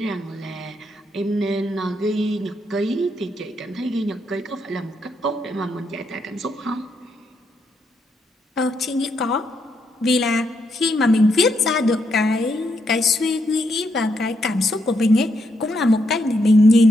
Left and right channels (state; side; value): normal; both; correlation 0.78